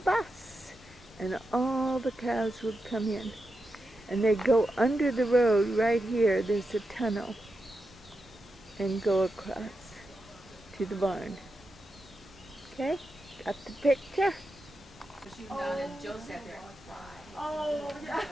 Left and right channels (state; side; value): normal; both; correlation 0.88